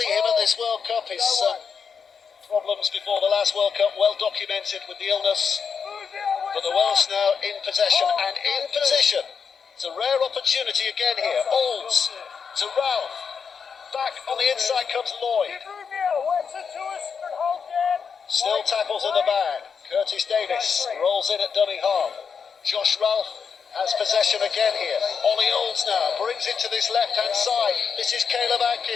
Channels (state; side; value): quieter; right; 6.2 dB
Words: him at this World Cup. His problems before the last World Cup well documented with the illness. But the Welsh now in possession and in position. It's a rare opportunity again here. Olds to Ralph. Back on the inside comes Lloyd. Still tackles in the bag. Curtis Davis rolls in at dummy half. Josh Ralph has possession again here. Ollie Olds now brings it to this left-hand side. This is Caleb